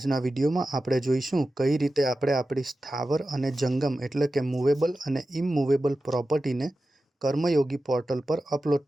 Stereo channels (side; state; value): both; normal; correlation 0.93